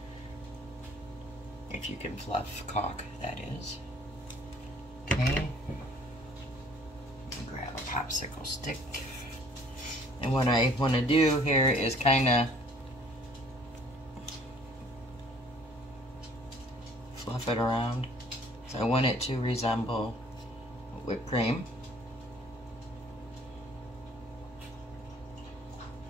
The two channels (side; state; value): both; normal; correlation 0.55